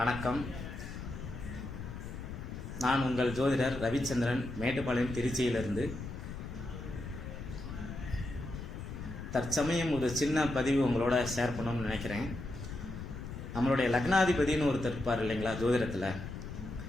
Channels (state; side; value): noise; left; rumble, 8 dB below the sound